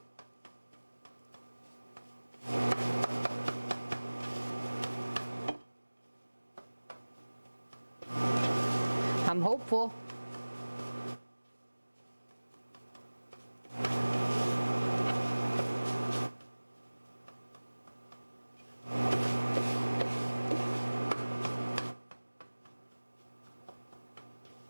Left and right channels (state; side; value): inverted; both; correlation -1.00